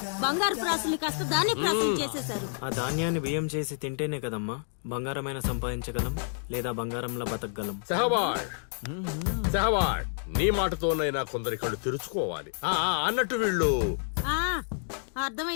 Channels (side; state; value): right; silent; digital silence